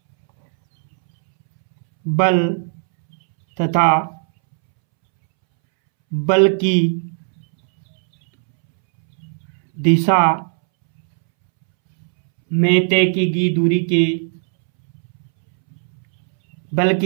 तथा बल की दिशा में तय की गई दूरी के बल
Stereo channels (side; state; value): left; silent; 68 dB below the other